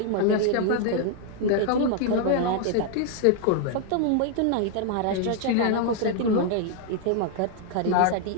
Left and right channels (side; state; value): both; different; correlation 0.00